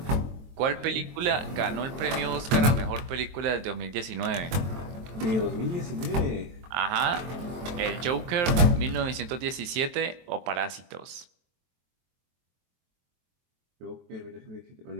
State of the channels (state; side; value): late; left; 23 ms